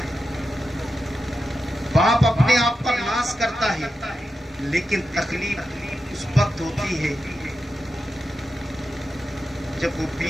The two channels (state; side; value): normal; both; correlation 0.90